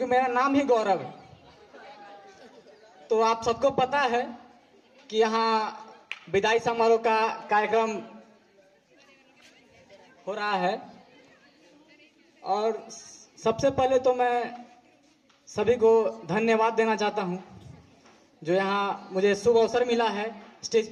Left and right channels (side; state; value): both; identical; correlation 1.00